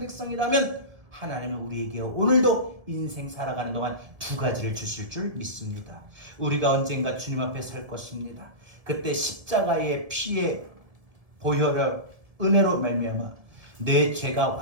하나님은 우리에게 오늘도 인생 살아가는 동안 두 가지를 주실 줄 믿습니다. 우리가 언젠가 주님 앞에 설 것입니다. 그때 십자가의 피의 보혈을 은혜로 말미암아 내 죄가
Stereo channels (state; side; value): late; left; 1.7 ms